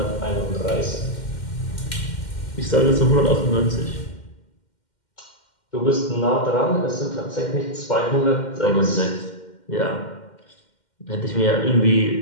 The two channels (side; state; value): right; late; 2.1 ms